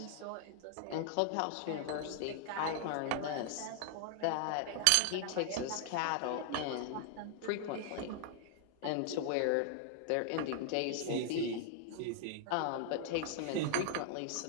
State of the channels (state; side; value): different; both; correlation 0.00